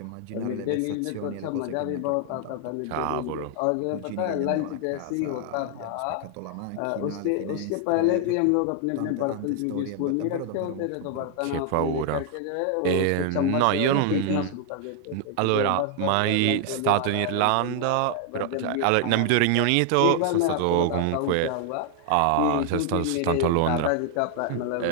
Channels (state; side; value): different; both; correlation 0.00